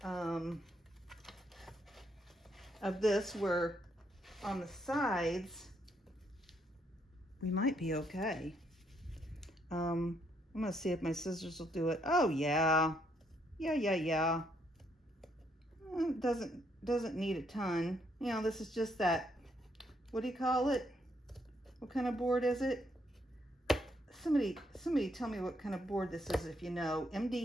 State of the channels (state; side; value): normal; both; correlation 0.73